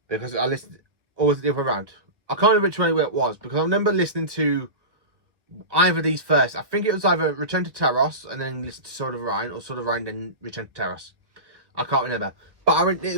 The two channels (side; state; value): left; late; 1.3 ms